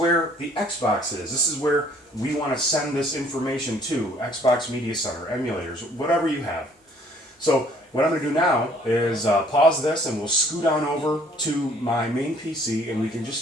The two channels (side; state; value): both; normal; correlation 0.59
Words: the Xbox is. This is where we want to send this information to Xbox Media Center, emulators, whatever you have. So what I'm going to do now is pause this and we'll scoot on over to my main PC and we can just